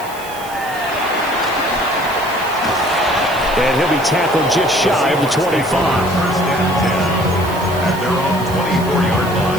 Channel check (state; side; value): noise; right; hiss, 16 dB below the sound